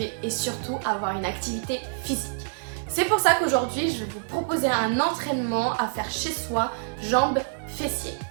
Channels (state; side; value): silent; left; digital silence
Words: et surtout avoir une activité physique. C'est pour ça qu'aujourd'hui, je vais vous proposer un entraînement à faire chez soi, jambes, fessiers.